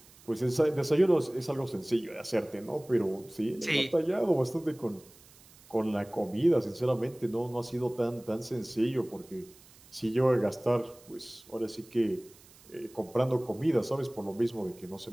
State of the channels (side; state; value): right; noise; hiss, 24 dB below the sound